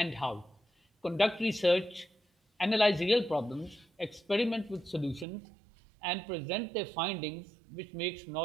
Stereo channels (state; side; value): drops out; left; at 5.2 s